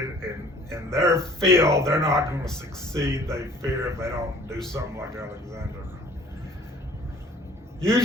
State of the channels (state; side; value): normal; both; correlation 0.52